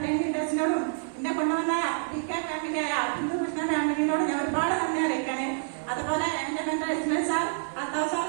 ലീഡേഴ്സിനോടും എന്നെ കൊണ്ടുവന്ന DK ഫാമിലി ബിന്ദു കൃഷ്ണ ഫാമിലിനോട് ഞാൻ ഒരുപാട് നന്ദി അറിയിക്കാണ്. അതുപോലെ എൻ്റെ mentor Ismail sir, Althaf sir,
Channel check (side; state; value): left; silent; 59 dB below the other